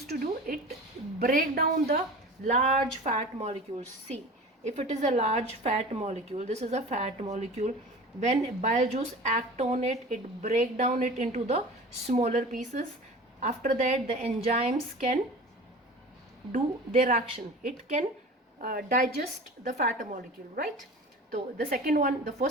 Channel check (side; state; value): both; normal; correlation 0.37